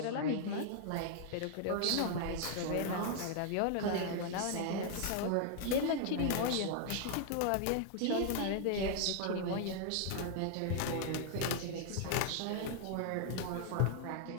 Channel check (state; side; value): different; both; correlation 0.00